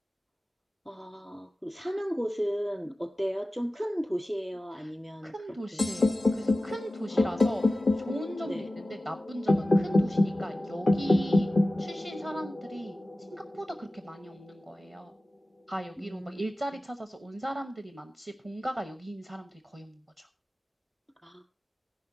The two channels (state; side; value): normal; both; correlation 0.96